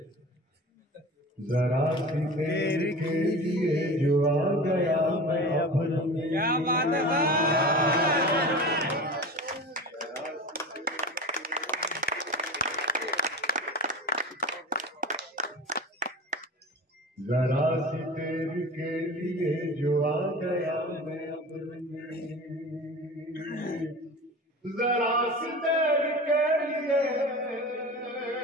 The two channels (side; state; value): both; normal; correlation 0.33